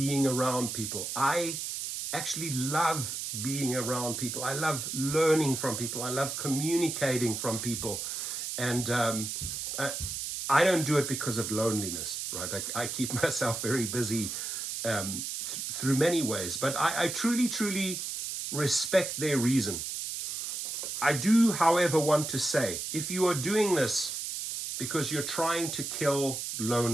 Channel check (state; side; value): noise; right; hiss, 4 dB below the sound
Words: around people. I actually love being around people. I love learning from people. I love communicating from people. And I don't do it because of loneliness, right? I keep myself very busy through many ways, but I truly, truly respect their reason. I do, however, want to say, if you are doing this because you're trying to kill